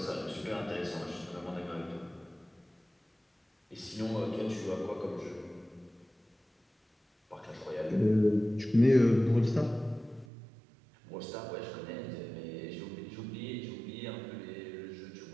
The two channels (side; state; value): left; drops out; at 10.2 s